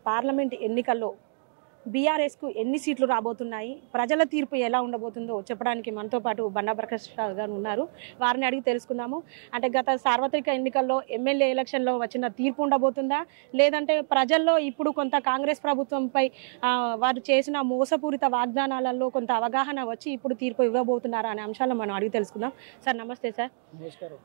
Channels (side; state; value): left; silent; digital silence